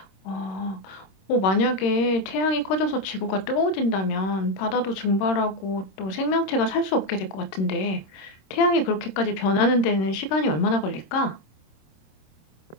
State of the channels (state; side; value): late; right; 26 ms